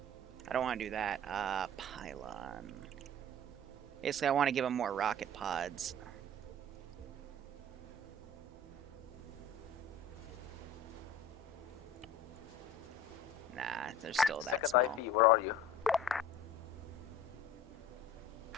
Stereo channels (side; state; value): both; normal; correlation 0.41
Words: I don't want to do that. Pylon. Basically, I want to give them more rocket pods. Nah, they're still that Second small. IP, where are you?